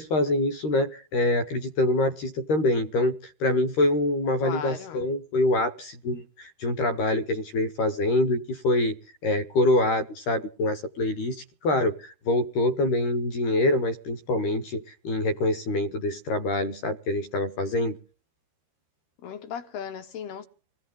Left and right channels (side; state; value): right; late; 13 ms